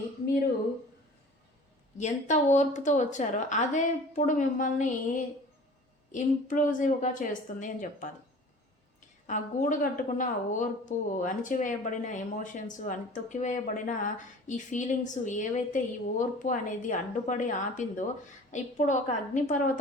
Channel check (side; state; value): both; normal; correlation 0.44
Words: మీరు ఎంత ఓర్పుతో వచ్చారో అదే ఇప్పుడు మిమ్మల్ని ఇంప్లూజివ్గా చేస్తుంది అని చెప్పాలి. ఆ గూడు కట్టుకున్న ఓర్పు, అణిచివేయబడిన ఎమోషన్స్, తొక్కివేయబడిన ఈ ఫీలింగ్స్ ఏవైతే ఈ ఓర్పు అనేది అడ్డుపడి ఆపిందో ఇప్పుడు ఒక